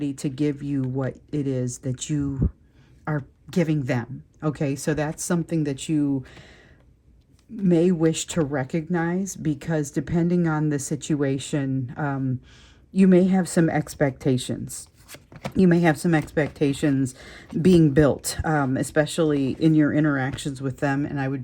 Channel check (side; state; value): both; identical; correlation 1.00